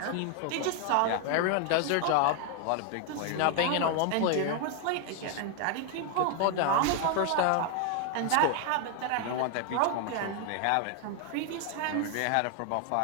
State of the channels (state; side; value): different; both; correlation 0.00